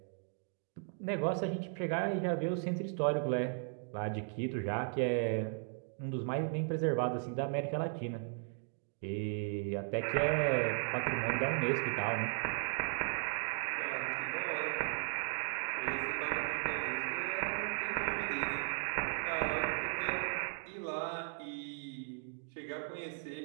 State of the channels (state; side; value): silent; left; 53 dB below the other